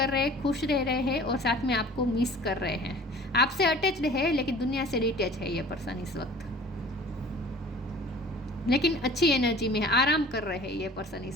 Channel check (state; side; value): normal; both; correlation 0.46